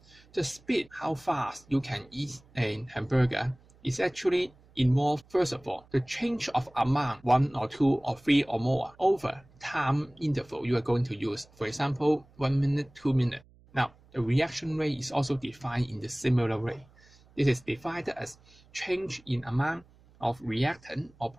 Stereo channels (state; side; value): noise; right; hum, 28 dB below the sound